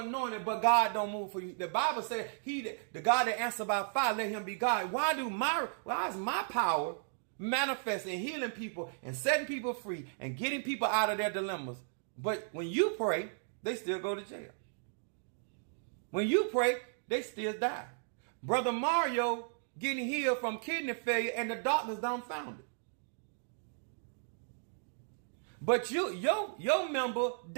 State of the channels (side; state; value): left; silent; digital silence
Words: but God don't move for you? The Bible said, the God that answers by fire, let him be God. Why is my power manifest in healing people and setting people free and getting people out of their dilemmas? But when you pray, they still go to jail. When you pray, they still die. Brother Mario getting healed from kidney failure and the doctors dumbfounded. But your member